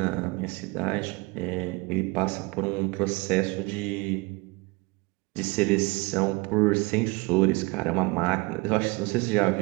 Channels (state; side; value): quieter; left; 25.5 dB